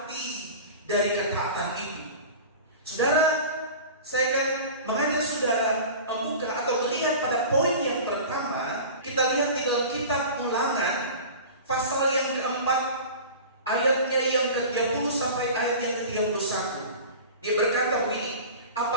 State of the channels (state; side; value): inverted; both; correlation -0.36